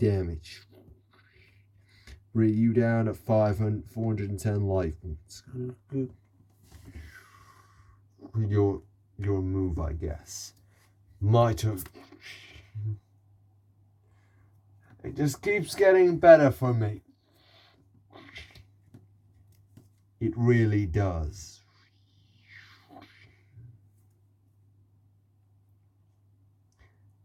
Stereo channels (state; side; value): identical; both; correlation 1.00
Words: Bring you down at 410 life points. Your move, I guess. My turn. It just keeps getting better for me. It really does.